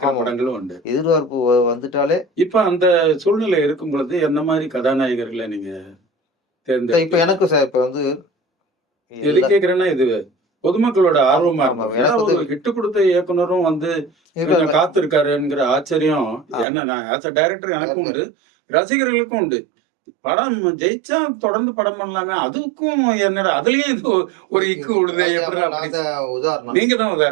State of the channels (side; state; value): left; drops out; at 16.7 s